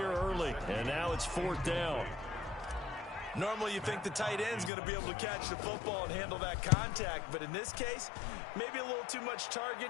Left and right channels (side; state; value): right; drops out; at 4.7 s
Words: early, and now it's fourth down. Normally you think the tight end's going to be able to catch the football and handle that contact, but in this case, maybe a little too much